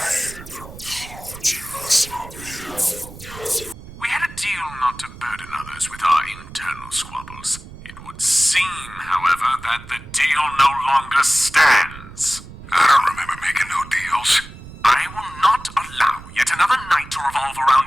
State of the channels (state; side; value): noise; right; rumble, 16 dB below the sound